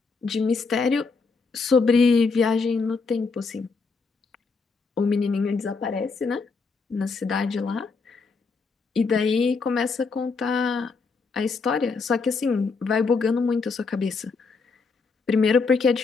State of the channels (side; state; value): right; quieter; 4.5 dB